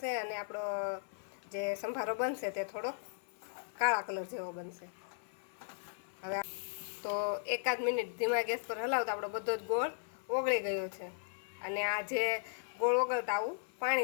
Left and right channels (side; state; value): right; silent; 53 dB below the other